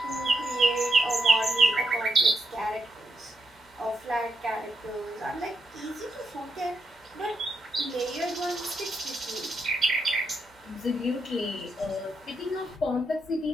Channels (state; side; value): normal; both; correlation 0.82